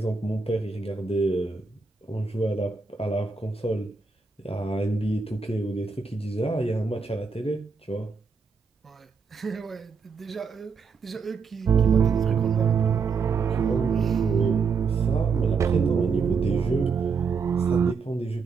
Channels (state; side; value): quieter; left; 5.1 dB